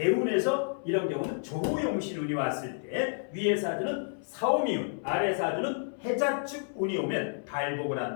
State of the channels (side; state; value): right; silent; 58 dB below the other